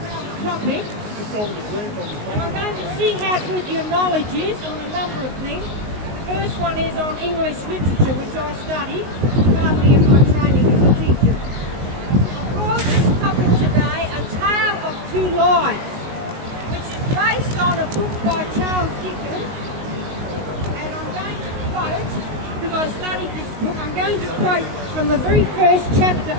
a topic. And I'm going to see how good your knowledge is on a number of things. The first one is on English literature, which I studied partly in my training as a teacher. I called this topic today A Tale of Two Lives, which is based on a book by Charles Dickens. And I'm going to quote, because I studied this book, I'm going to quote from the very first chapter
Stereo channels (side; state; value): left; late; 19 ms